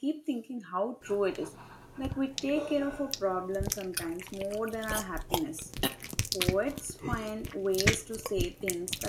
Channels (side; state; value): both; identical; correlation 1.00